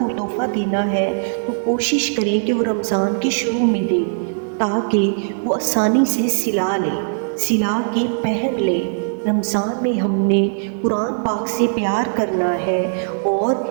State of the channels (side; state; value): left; silent; digital silence